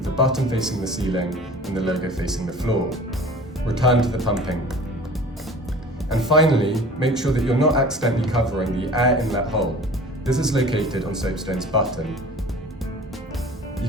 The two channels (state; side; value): normal; both; correlation 0.43